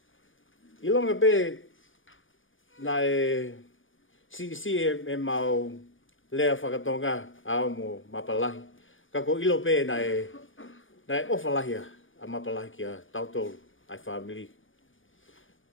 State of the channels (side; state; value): right; late; 0.57 ms